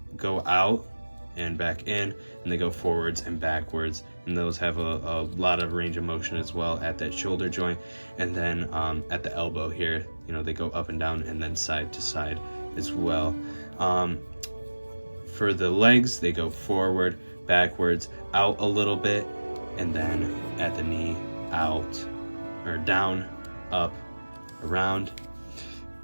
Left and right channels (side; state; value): both; inverted; correlation -1.00